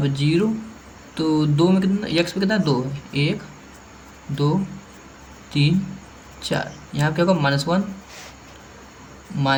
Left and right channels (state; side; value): identical; both; correlation 1.00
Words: 0, तो 2 में कितना, x पे कितना 2 है, 1 2 3 4, यहाँ क्या होगा, -1